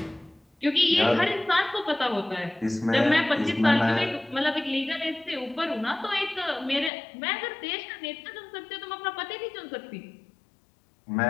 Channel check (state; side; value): drops out; right; at 6.9 s